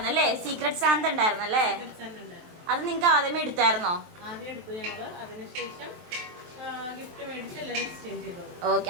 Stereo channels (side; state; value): left; late; 23 ms